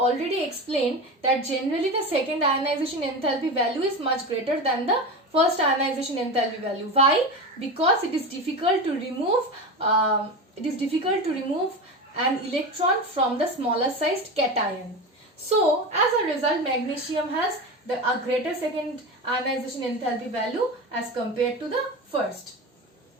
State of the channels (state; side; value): normal; both; correlation 0.24